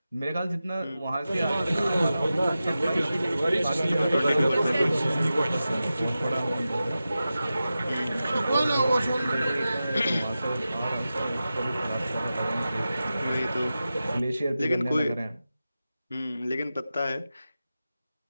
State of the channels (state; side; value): inverted; both; correlation -0.93